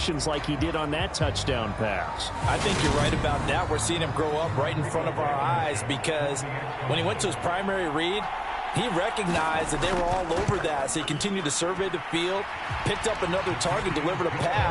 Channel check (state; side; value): identical; both; correlation 1.00